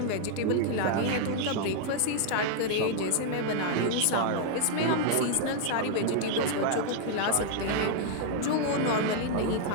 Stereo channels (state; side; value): different; both; correlation 0.00